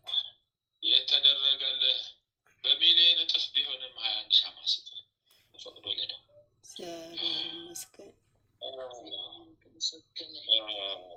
የተደረገልህ በሚሊዮን እጥፍ ቢሆንም 21 ሻማ ስጥ። ፈቅዶልህ ነው። እግዚአብሔር ይመስገን።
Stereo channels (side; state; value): both; identical; correlation 1.00